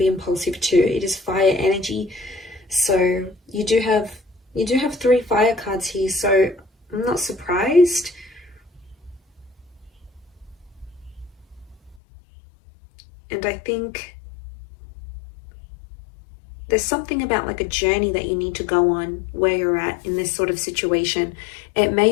impulsive too. It is fire energy. So you do have 3 fire cards here. So I'm not surprised. And I think there's something about like a journey that you need to go on where you're at in this sort of situation. It may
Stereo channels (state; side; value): drops out; right; at 12.0 s